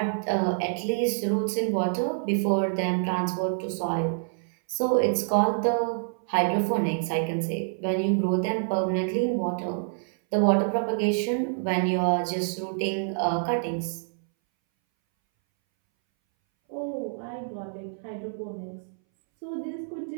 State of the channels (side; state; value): left; silent; 60 dB below the other